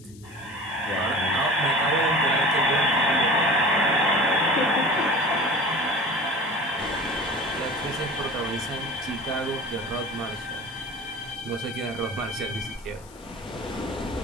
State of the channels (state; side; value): noise; left; hiss, 24 dB below the sound